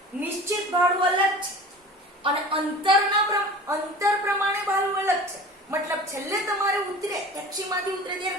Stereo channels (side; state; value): both; normal; correlation 0.39